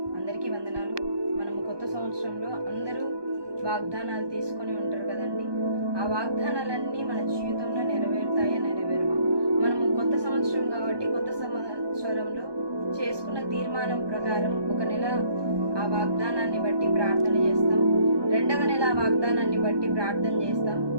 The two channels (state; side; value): late; left; 1.2 ms